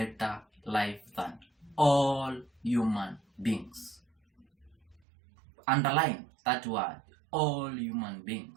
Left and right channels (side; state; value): left; drops out; at 5.0 s